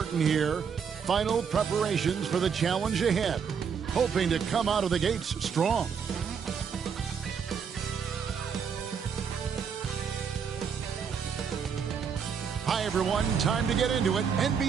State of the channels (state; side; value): quieter; left; 6.7 dB